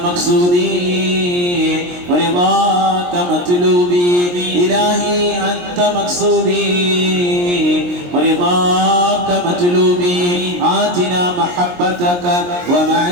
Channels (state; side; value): late; left; 23 ms